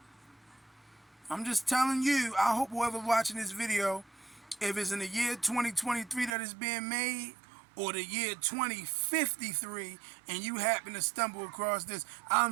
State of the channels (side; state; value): left; drops out; at 6.4 s